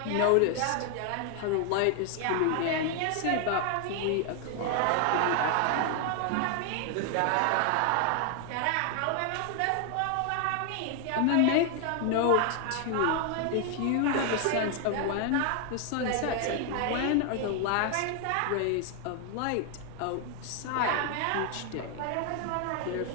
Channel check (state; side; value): different; both; correlation 0.00